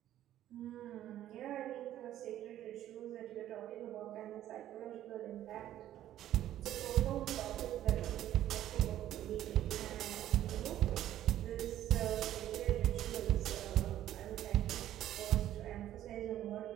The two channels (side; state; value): left; quieter; 12.4 dB